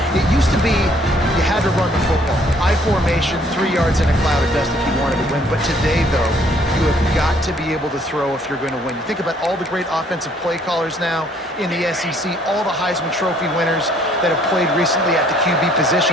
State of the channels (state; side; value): normal; both; correlation 0.62